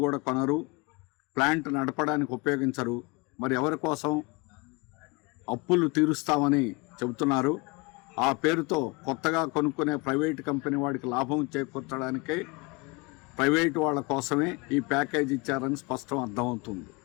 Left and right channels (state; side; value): quieter; right; 27.1 dB